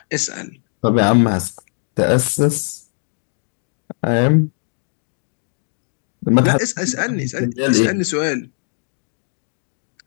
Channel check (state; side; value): silent; right; digital silence